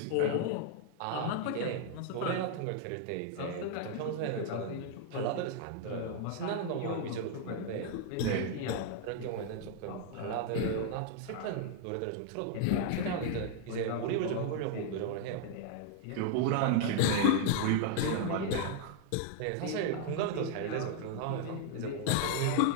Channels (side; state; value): both; different; correlation 0.00